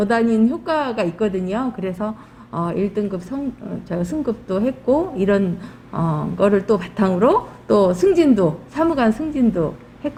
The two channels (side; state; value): both; identical; correlation 1.00